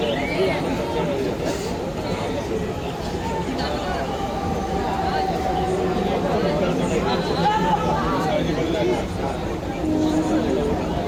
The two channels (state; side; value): identical; both; correlation 1.00